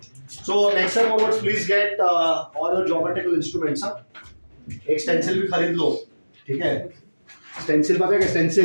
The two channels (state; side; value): inverted; both; correlation -1.00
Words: So next time onwards please get all your geometrical instruments. एक स्टेंसिल भी खरीद लो, ठीक है? स्टेंसिल पता है क्या?